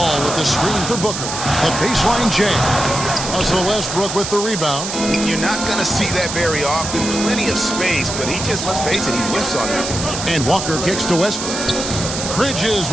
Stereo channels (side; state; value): right; noise; hiss, 5 dB below the sound